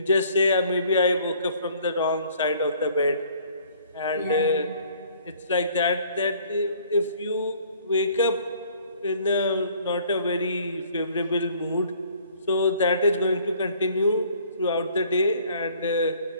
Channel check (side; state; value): both; inverted; correlation -0.58